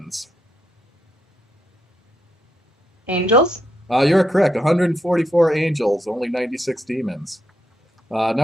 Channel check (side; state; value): both; normal; correlation 0.79